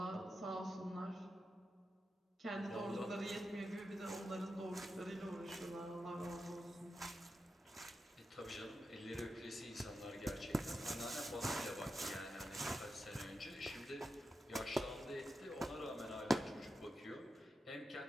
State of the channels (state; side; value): normal; both; correlation 0.89